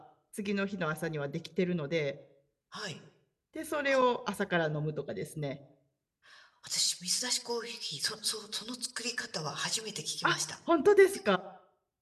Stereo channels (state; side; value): identical; both; correlation 1.00